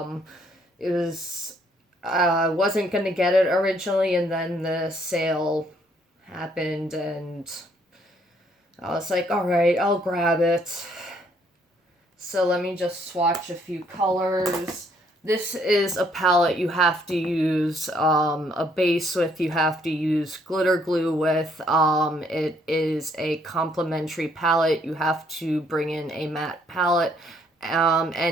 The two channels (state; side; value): normal; both; correlation 0.67